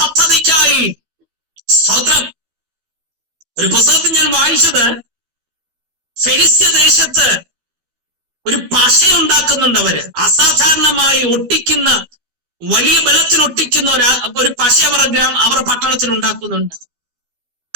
സ്തോത്രം. ഒരു പുസ്തകത്തിൽ ഞാൻ വായിച്ചത്, ഫെലിസ്ത്യ ദേശത്ത് ഒരു പശ ഉണ്ടാക്കുന്നുണ്ട് അവര്. അസാധാരണമായി ഒട്ടിക്കുന്ന, വലിയ ബലത്തിൽ ഒട്ടിക്കുന്ന ഒരു പശ അവരുടെ പട്ടണത്തിൽ ഉണ്ടാക്കുന്നുണ്ട്.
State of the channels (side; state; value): left; late; 12 ms